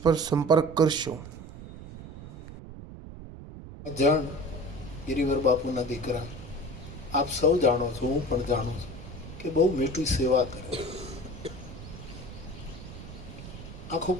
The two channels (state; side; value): noise; right; rumble, 13 dB below the sound